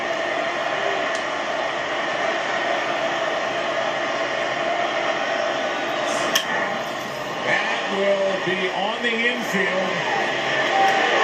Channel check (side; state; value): both; identical; correlation 1.00